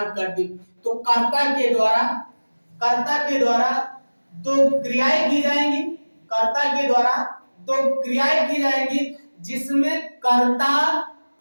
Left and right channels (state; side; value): inverted; both; correlation -1.00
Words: कर दी। तो कर्ता के द्वारा दो क्रियाएं की जाएंगी। कर्ता के द्वारा दो क्रियाएं की जाएंगी, जिसमें कर्ता